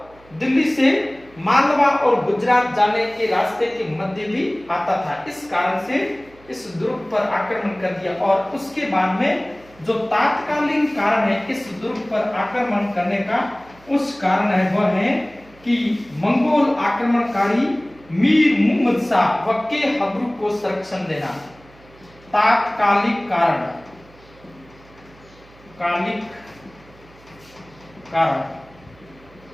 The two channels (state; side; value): noise; right; hum, 26 dB below the sound